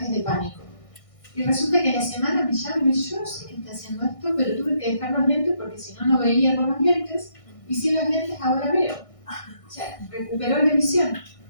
de pánico. Y resulta que a la semana me llama y me dice, yo no sé qué está haciendo esto, pero tuve que dejar los lentes porque si no, no veía con los lentes, y sin los lentes ahora veo. O sea, recuperó la visión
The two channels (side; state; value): right; late; 1.6 ms